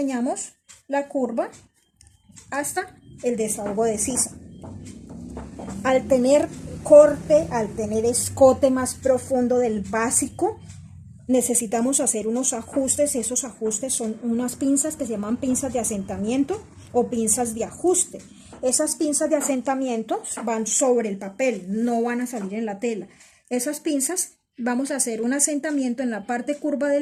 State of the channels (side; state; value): both; identical; correlation 1.00